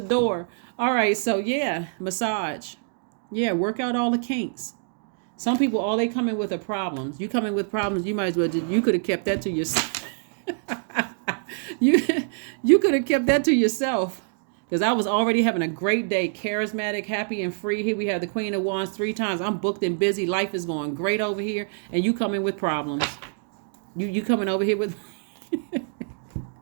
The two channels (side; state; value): left; silent; digital silence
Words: All right, so yeah, massage. Yeah, work out all the kinks. Some people, all they come in with are problems. You come in with problems, you might as well you could have kept that to yourself. you could have kept that to yourself. Because I was already having a great day, charismatic, happy, and free. Here we have the Queen of Wands 3 times. I'm booked and busy. Life is going great over here. And you come in with problems. You coming over here with...